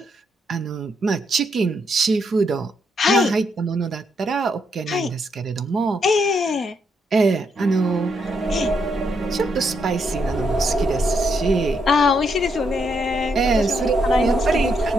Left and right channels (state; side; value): normal; both; correlation 0.77